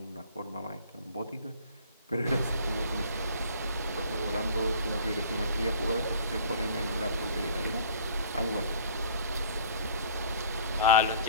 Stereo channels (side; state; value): both; inverted; correlation -0.50